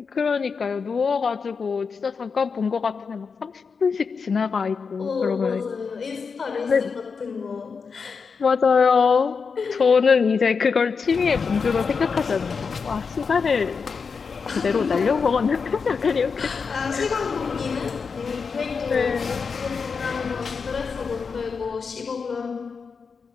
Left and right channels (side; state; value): right; quieter; 5.4 dB